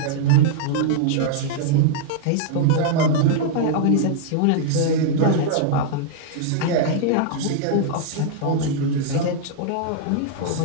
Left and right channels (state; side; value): different; both; correlation -0.01